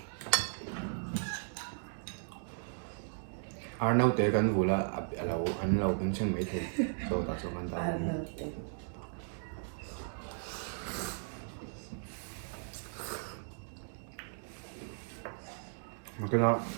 Arnaud te kan vula alo an lo kan chen mai the to ta so kan ta mà cái nó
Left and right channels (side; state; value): left; silent; digital silence